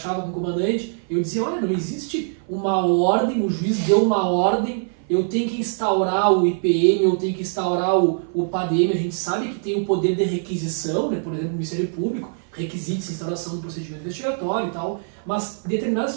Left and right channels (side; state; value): left; silent; 57 dB below the other